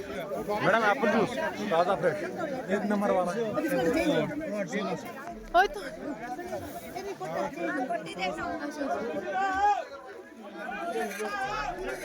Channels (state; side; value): identical; both; correlation 1.00